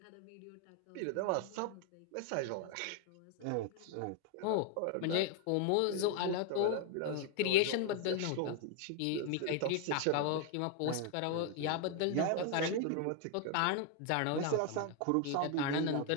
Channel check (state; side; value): different; both; correlation 0.01